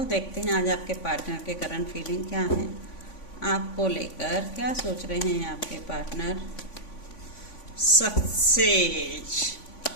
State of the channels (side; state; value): right; late; 3.5 ms